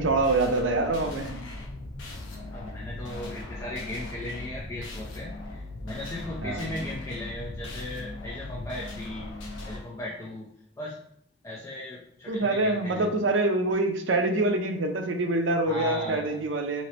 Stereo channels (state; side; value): normal; both; correlation 0.07